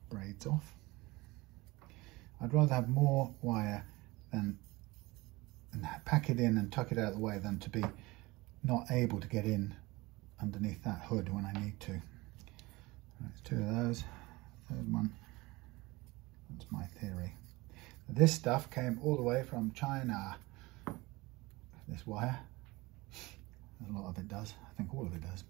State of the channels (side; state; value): left; quieter; 22.0 dB